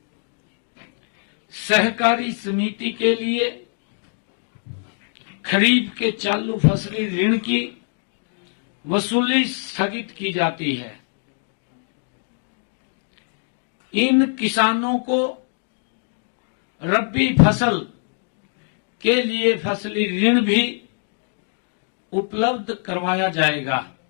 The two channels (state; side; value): silent; right; digital silence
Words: सहकारी समिति के लिए खरीफ के चालू फसली ऋण की वसूली स्थगित की जाती है। इन किसानों को रबी फसल के लिए फसली ऋण भी उपलब्ध करवाया जाएगा।